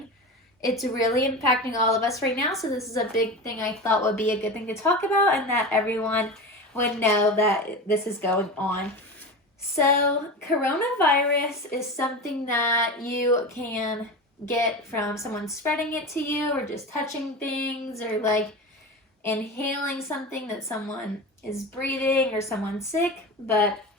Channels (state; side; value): normal; both; correlation 0.27